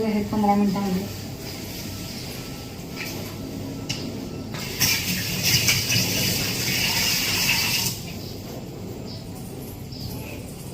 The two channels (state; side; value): identical; both; correlation 1.00